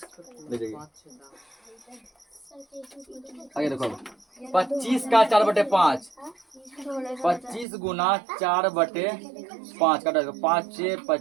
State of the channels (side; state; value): left; drops out; at 7.7 s